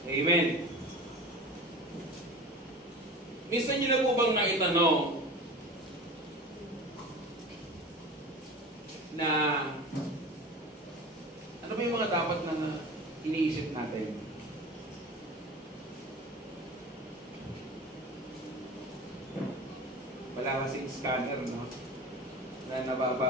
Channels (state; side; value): normal; both; correlation 0.35